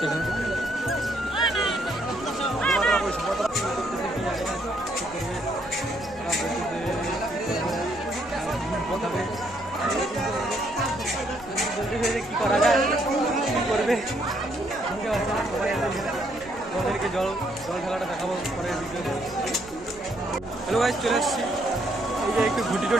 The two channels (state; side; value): noise; right; rumble, 22 dB below the sound